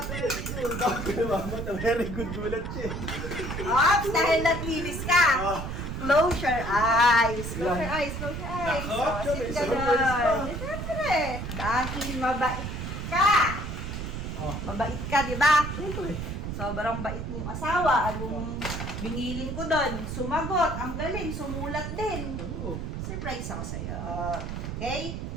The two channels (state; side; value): noise; right; rumble, 5 dB below the sound